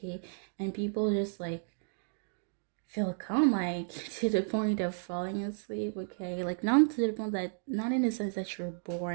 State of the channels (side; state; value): left; silent; digital silence